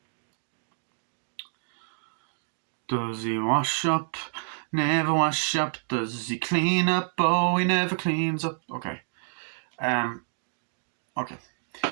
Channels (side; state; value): left; silent; 59 dB below the other